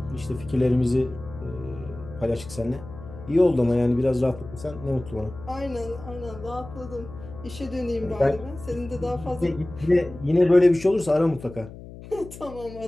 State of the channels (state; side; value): noise; left; hum, 15 dB below the sound